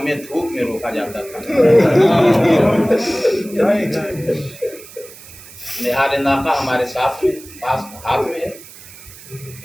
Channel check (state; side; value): noise; right; hiss, 18 dB below the sound